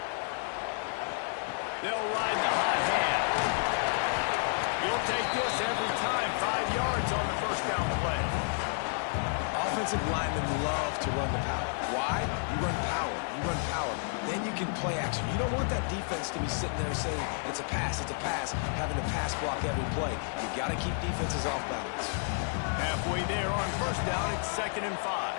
They'll ride the hot hand. You'll take this every time. 5 yards on the first down play. Offensive linemen love to run the power. Why? You run power. You run power. Then you can play action. You don't want that defense to be sitting there saying, it's a pass, having to pass block every play. You've got to keep defenses off balance. Halfway there on first down, it's 2nd and 5.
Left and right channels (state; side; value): silent; right; 57 dB below the other